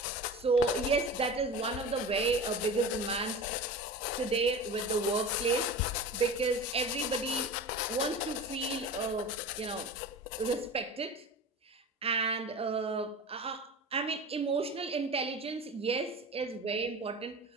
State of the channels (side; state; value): both; normal; correlation 0.32